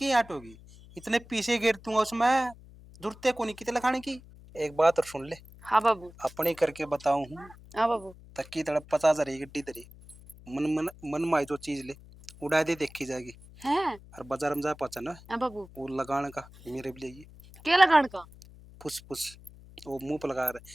हटोगी? इतने पीछे गिर दूंगा उसमें, जरूरत को नहीं कितने लगाने की। एक बात और सुन ले, हाँ बाबू। अपने करके बताऊं हूँ, हाँ बाबू। तक्की तड़प 50,000 गड्डी तरी मन मन मन माई जो चीज ले उड़ा दे देखी जाएगी। हैं। और बाजार में जा पहुंचा ना, हाँ बाबू। वो लगाने का मेरे भी लिए क्या लगान का? फुस फुस, वो मुंह पर लगा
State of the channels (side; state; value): left; noise; hum, 21 dB below the sound